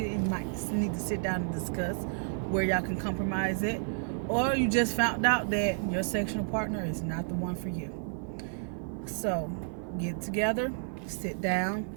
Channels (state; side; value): silent; left; 57 dB below the other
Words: and you might need to sit down and discuss where y'all can compromise it. Or you just found out that your sexual partner is not the one for you. So, get together, sit down,